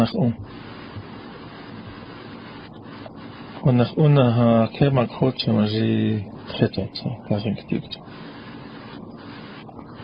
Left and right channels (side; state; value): both; identical; correlation 1.00